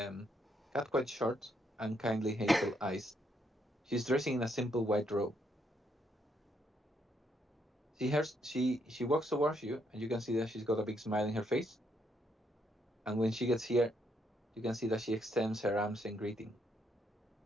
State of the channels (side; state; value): both; normal; correlation 0.75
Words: quite short, and kindly hazel eyes. She's dressing in a simple white robe. She walks towards you, and you can see that she's got a big smile in her face. And when she gets here, you can see that she extends her arms in greeting.